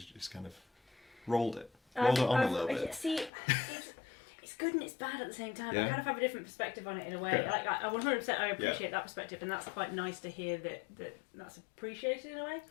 just kind of rolled it on a little bit. See, it's good and it's bad at the same time. Yeah. I kind of have a different perspective on it in a way. Yeah. Like I 100% I appreciate that perspective, and that's quite nice to hear that's appreciated in a way.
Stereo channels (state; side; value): drops out; right; at 3.3 s